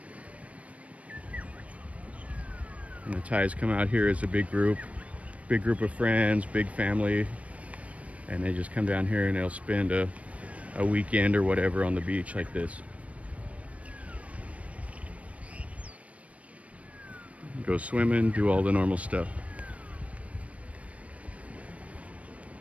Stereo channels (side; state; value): left; late; 0.065 ms